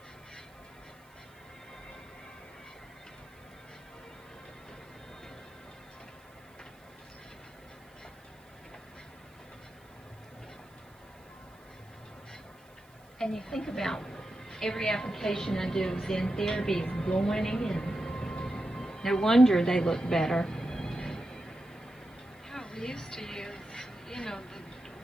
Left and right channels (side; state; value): right; noise; hiss, 30 dB below the sound